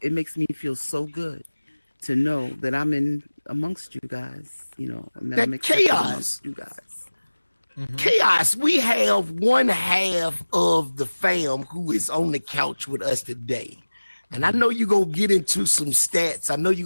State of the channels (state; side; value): inverted; both; correlation -1.00